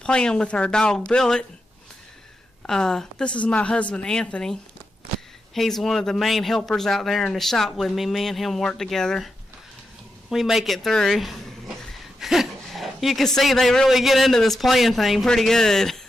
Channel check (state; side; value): normal; both; correlation 0.87